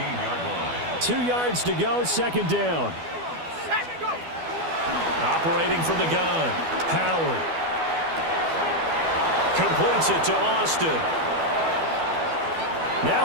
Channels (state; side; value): late; left; 12 ms